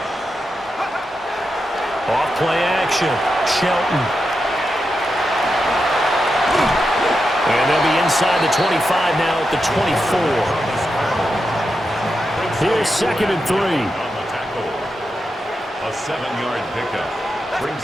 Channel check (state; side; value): normal; both; correlation 0.87